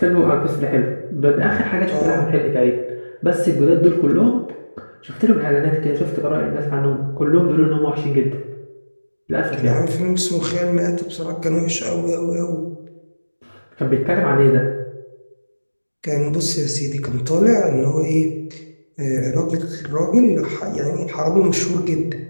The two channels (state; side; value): inverted; both; correlation -1.00